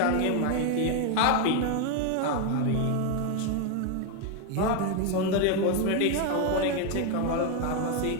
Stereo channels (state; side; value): different; both; correlation 0.01